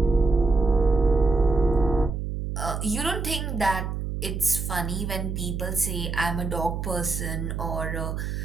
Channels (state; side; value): noise; right; hum, 3 dB below the sound